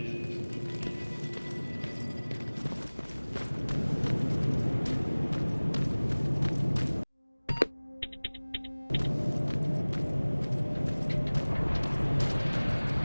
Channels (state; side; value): inverted; both; correlation -1.00